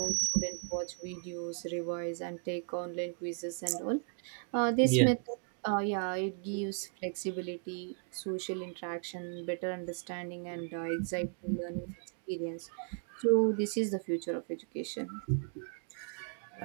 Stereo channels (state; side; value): silent; left; 54 dB below the other